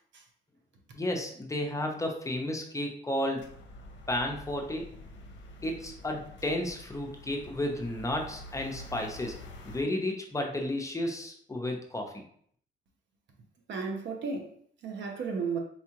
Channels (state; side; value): normal; both; correlation 0.57